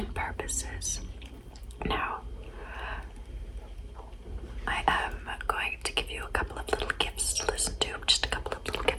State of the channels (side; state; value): both; identical; correlation 1.00